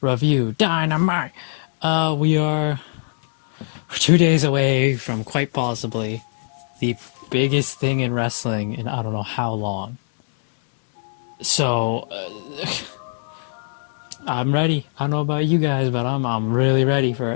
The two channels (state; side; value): silent; right; digital silence